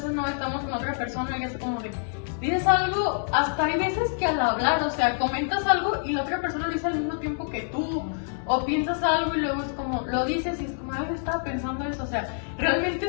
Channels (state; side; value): silent; right; 61 dB below the other